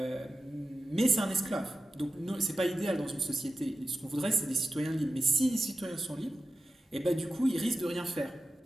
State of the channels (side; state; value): both; normal; correlation 0.92